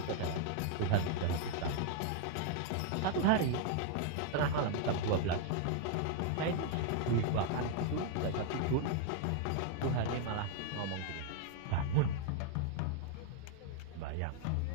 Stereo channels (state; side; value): different; both; correlation 0.00